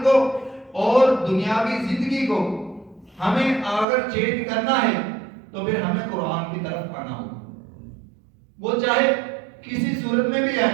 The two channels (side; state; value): left; drops out; at 3.9 s